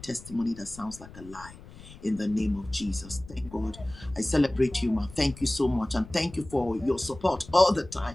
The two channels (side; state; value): left; noise; rumble, 18 dB below the sound